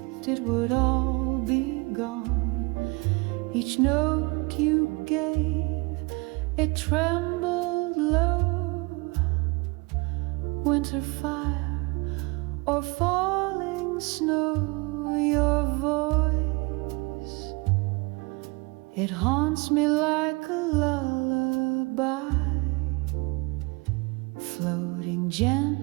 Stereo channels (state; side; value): quieter; left; 27.6 dB